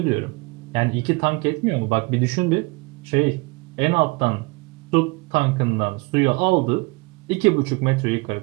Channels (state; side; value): quieter; left; 26.2 dB